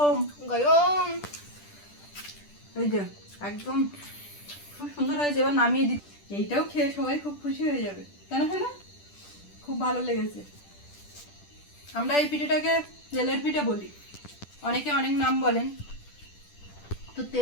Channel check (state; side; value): late; right; 10 ms